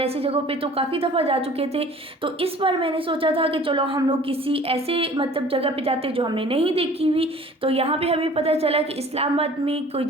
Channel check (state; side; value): normal; both; correlation 0.48